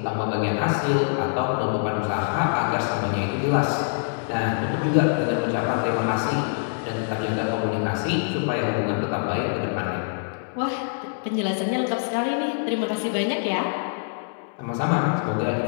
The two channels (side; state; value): right; silent; digital silence